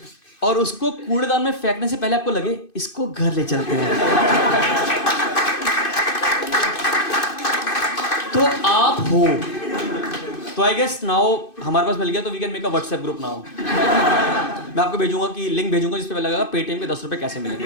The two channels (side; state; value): right; late; 2.5 ms